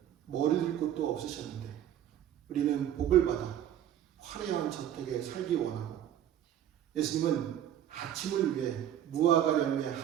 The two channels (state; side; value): quieter; left; 10.8 dB